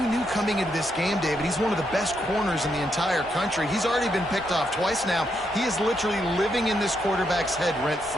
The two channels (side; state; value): both; normal; correlation 0.79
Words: knew coming into this game, David, he's one of the best corners in the entire country. He's already been picked off twice now. He is literally living in this quarterback's head